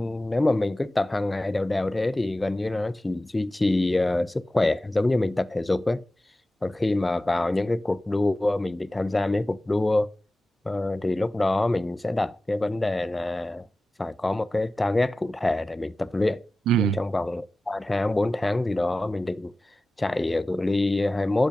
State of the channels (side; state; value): both; normal; correlation 0.96